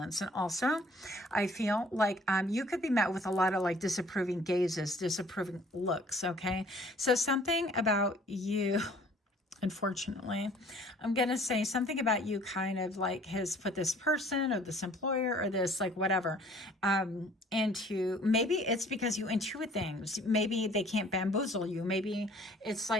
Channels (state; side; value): normal; both; correlation 0.55